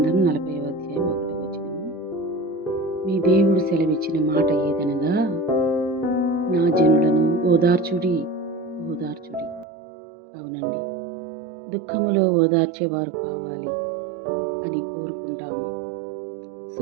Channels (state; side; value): drops out; left; at 9.7 s